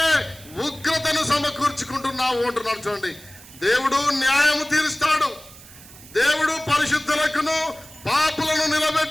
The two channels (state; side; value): noise; right; hiss, 20 dB below the sound